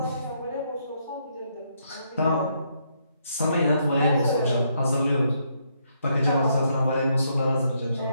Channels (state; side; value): inverted; both; correlation -0.75